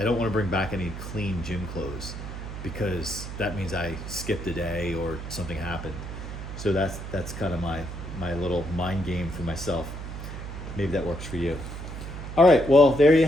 don't want to bring back any clean gym clothes because that means I skipped a day or something happened. So that's kind of my little mind game for myself. Maybe that works for you. All right, well, there you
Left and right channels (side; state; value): right; noise; hum, 8 dB below the sound